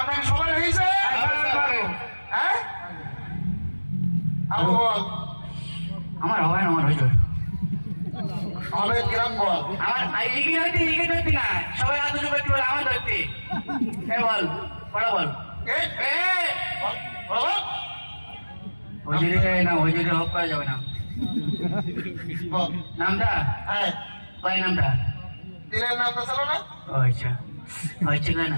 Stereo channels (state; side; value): inverted; both; correlation -1.00